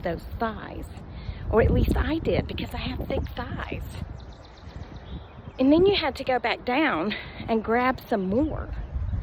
thighs. Or at least I did, because I have thick thighs. And then you had to go back down and grab some more.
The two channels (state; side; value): identical; both; correlation 1.00